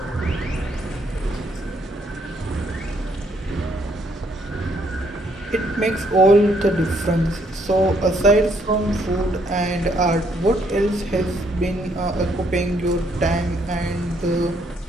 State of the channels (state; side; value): normal; both; correlation 0.70